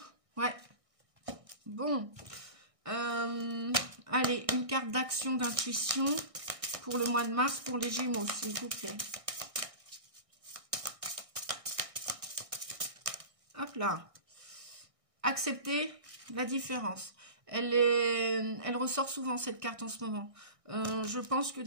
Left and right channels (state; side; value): late; left; 1.6 ms